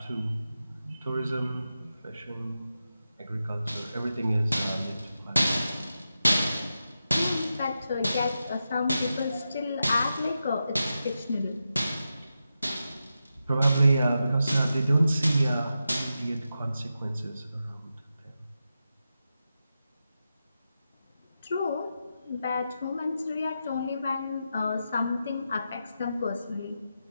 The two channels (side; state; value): both; inverted; correlation -0.89